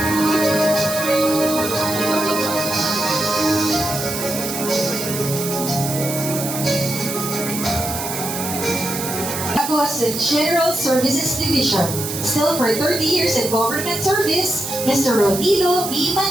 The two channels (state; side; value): noise; right; hiss, 6 dB below the sound